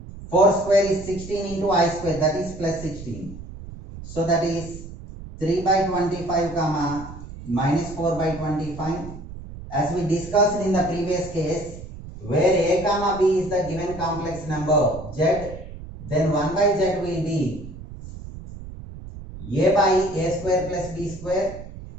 4 square is 16 into I square, that is plus 16. So that is 3 by 25 comma minus 4 by 25. As we discussed in the previous case, where a comma b is the given complex number z, then 1 by z will be a by a square plus b square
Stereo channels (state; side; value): noise; right; rumble, 13 dB below the sound